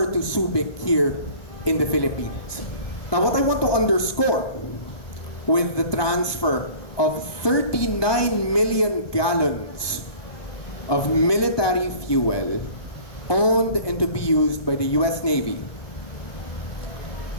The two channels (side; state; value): right; late; 1.2 ms